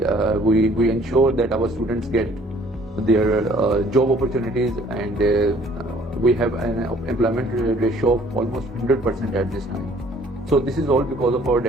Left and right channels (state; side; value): normal; both; correlation 0.57